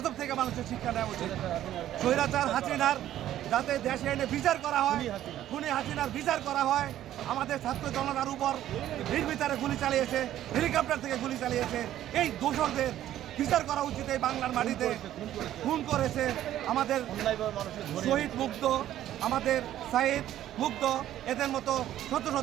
থেকে মানুষের শিক্ষা নেওয়া উচিত। স্বৈরাচার হাসিনার যাতে দেশে এনে বিচার করা হয়, খুনি হাসিনার বিচার করা হয়। আমাদের ছাত্র জনতার উপর নির্বিচারে গুলি চালিয়েছে, হেলিকপ্টার থেকে গুলি চালিয়েছে, এই দোষরদের বিচার করা উচিত। এই বাংলার মাটিতে খুন করেছে আমাদের শহীদ মুগ্ধ, আমাদের সাইদ মুগ্ধ, এদের মতো শত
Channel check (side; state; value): left; quieter; 12.5 dB